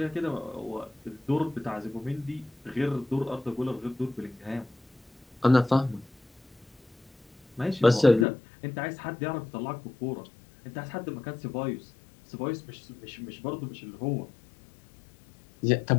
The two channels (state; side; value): drops out; right; at 8.2 s